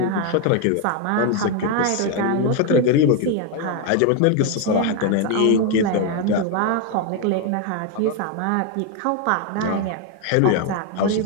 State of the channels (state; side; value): different; both; correlation 0.01